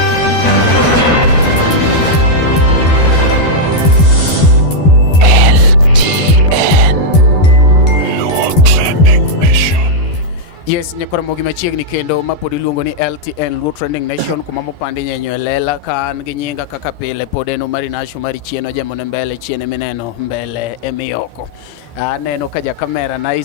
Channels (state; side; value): late; right; 12 ms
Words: Yes, nyakora mogi machiegni kendo mapod iluongo ni LTN Luo Trending Nation kuma mopandi nyenyo elela kan gi nyinga kaka pile pod eno mari nasho mari chieno jamone mbele chiene mineno mbele emiyoko. Aneno ka ja kamera